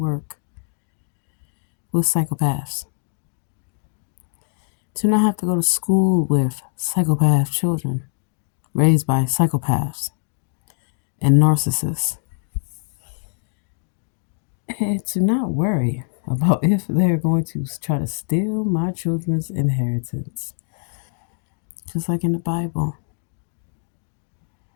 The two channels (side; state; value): right; silent; 63 dB below the other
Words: with psychopaths. To not have to go to school with psychopath children raised by psychopaths and narcissists. And to not worry about if they're going to try to steal my children's inheritance. Just like in the Bible.